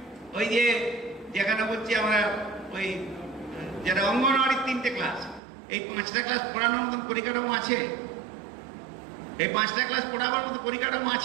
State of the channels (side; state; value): left; drops out; at 5.4 s